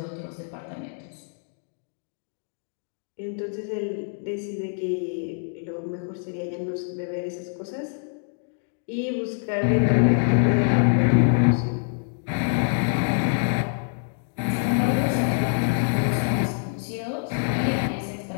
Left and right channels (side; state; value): right; silent; digital silence